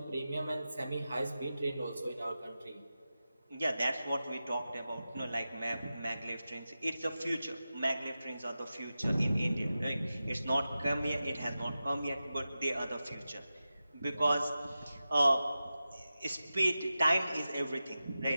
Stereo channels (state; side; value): inverted; both; correlation -0.93